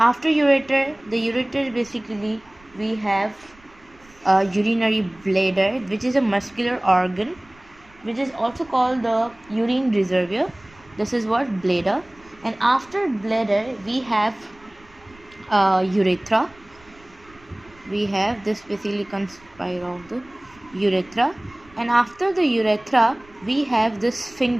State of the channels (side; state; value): right; noise; rumble, 27 dB below the sound